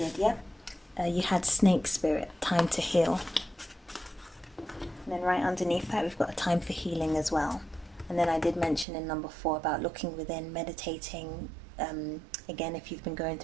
yep. You had snake spirit, time to heal. And then right underneath that, we've got a time for healing as well. And then I did mention in number 4 about looking within, meditating, Again, if you've been going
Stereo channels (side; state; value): left; drops out; at 8.8 s